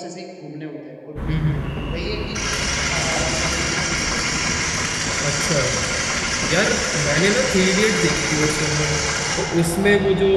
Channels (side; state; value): both; identical; correlation 1.00